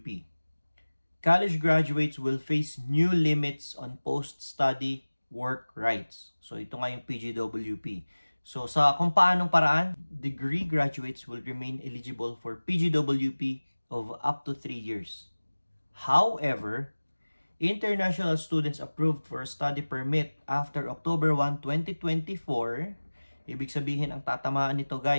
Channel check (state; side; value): inverted; both; correlation -1.00